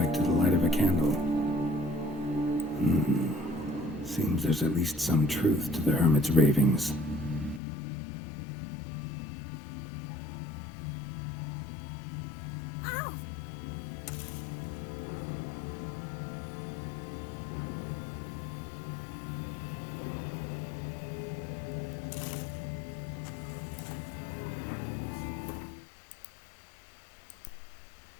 to the light of a candle. Seems there's at least some truth to the hermit's ravings.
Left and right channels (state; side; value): drops out; right; at 7.6 s